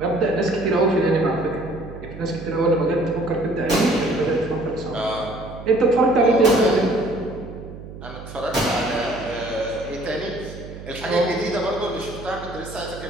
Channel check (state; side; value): noise; right; hum, 13 dB below the sound